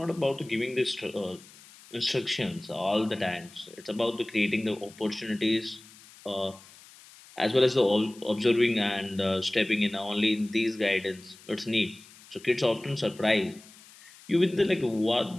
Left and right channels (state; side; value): noise; left; hiss, 22 dB below the sound